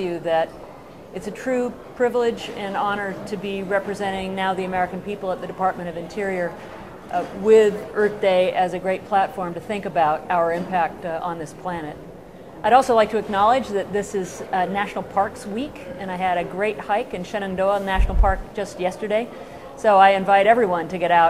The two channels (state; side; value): identical; both; correlation 1.00